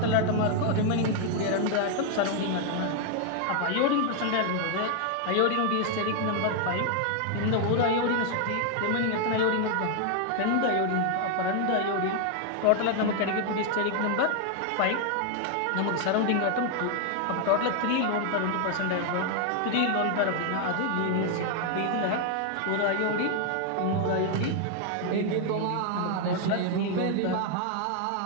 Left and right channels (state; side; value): different; both; correlation 0.00